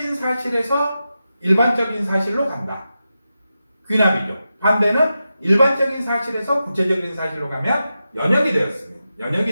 사실에서 일반적인 사실로 간다. 귀납이죠. 반대는 일반적인 사실에서 구체적인 사실로 가면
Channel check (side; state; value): both; inverted; correlation -0.90